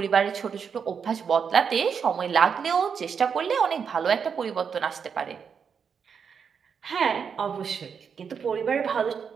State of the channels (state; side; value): quieter; left; 6.6 dB